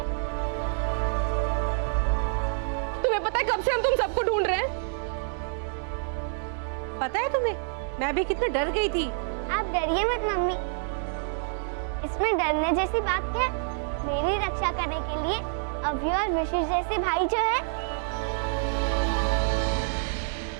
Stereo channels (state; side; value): silent; left; 60 dB below the other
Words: तुम्हें पता है कब से हम तुम सबको ढूंढ रहे हैं? पता है तुम्हें, मैं भी कितना डर गई थी। आप डरिए मत मम्मी, इसमें डरने जैसी बात क्या है? मेरी रक्षा करने के लिए अभी और विशेष जैसे भाई जो है।